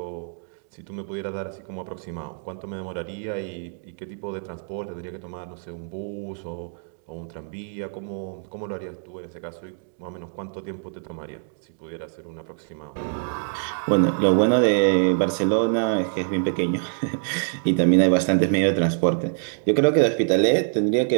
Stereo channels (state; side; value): silent; left; digital silence